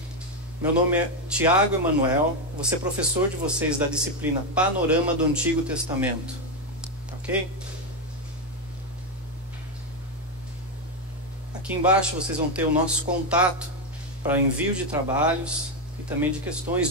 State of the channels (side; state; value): both; normal; correlation 0.07